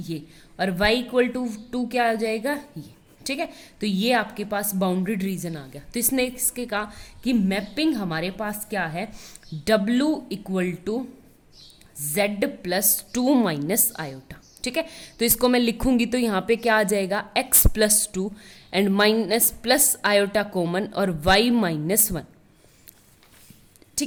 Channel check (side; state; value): both; identical; correlation 1.00